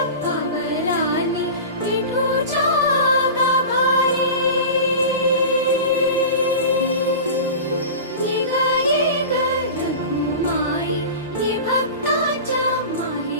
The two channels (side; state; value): both; inverted; correlation -0.31